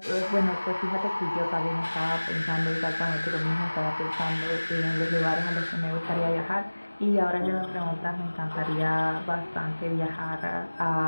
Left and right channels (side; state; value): both; inverted; correlation -1.00